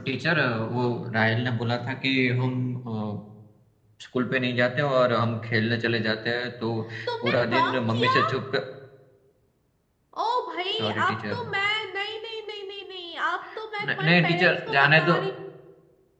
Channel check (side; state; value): both; identical; correlation 1.00